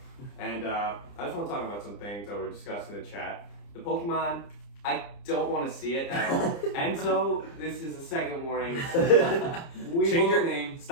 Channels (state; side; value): late; right; 30 ms